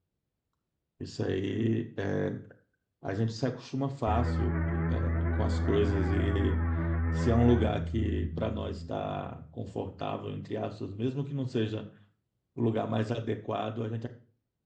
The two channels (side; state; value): both; identical; correlation 1.00